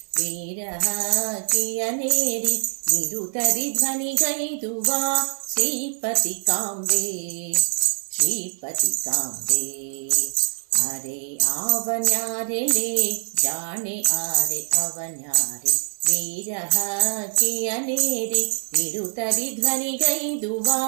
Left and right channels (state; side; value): silent; left; 63 dB below the other